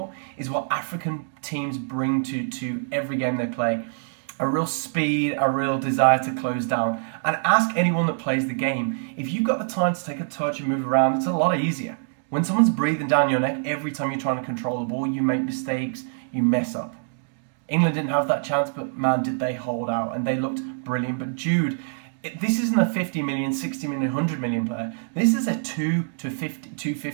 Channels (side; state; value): left; silent; digital silence